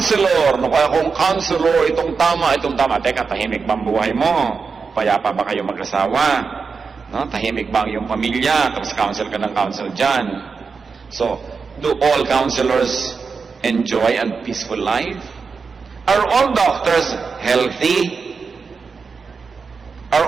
kaya kung counselor, itong tama. Teka, tahimik ba ang buhay mo? Payapa ba kayo mag-asawa? No? Tahimik ba ang iyong pamilya? Tapos counsel ka ng counsel dyan. So, do all counselors enjoy a peaceful life? Are all doctors healthy? Are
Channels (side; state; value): left; quieter; 5.1 dB